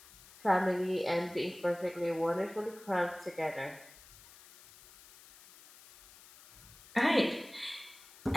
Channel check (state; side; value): noise; left; hiss, 22 dB below the sound